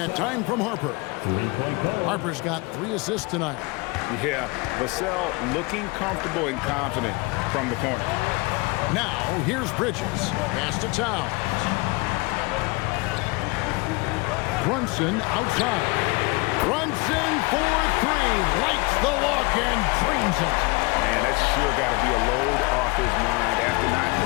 time from Harper. Harper's got 3 assists tonight. Yeah, Vassell looking comfortable and confident from the corner. Now, here's Bridges. Pass to Towns. Brunson outside. Brunson for 3. Lights the lock and drains it. Man, that's sure got to be a load off his mind after not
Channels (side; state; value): right; quieter; 26.0 dB